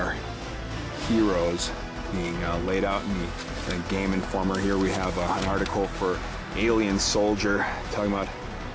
Heores being laid out in the Game Informer. Here we have an article for Alien Soldier talking about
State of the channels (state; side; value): identical; both; correlation 1.00